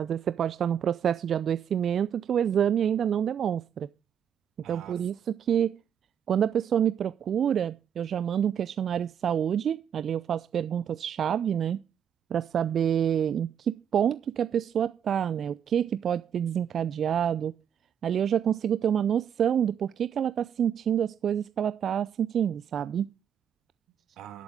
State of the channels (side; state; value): left; quieter; 8.6 dB